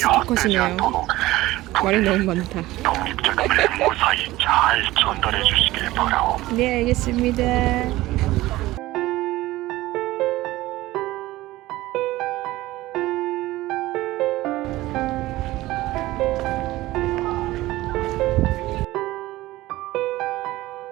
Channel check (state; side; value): quieter; left; 17.6 dB